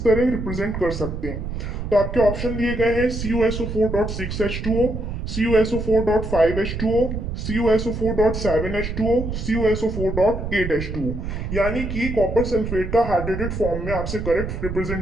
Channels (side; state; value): right; noise; rumble, 5 dB below the sound